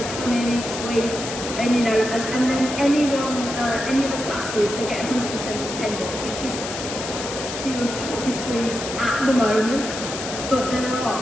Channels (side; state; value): left; noise; hiss, 7 dB below the sound